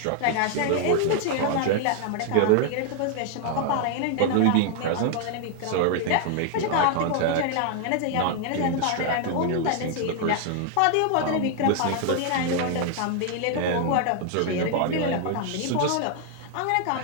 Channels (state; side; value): different; both; correlation 0.00